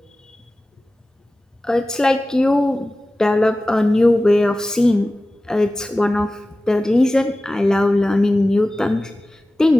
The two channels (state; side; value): normal; both; correlation 0.96